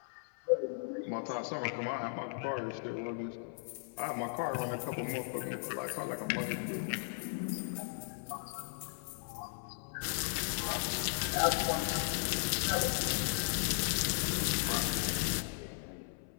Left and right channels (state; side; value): silent; right; 53 dB below the other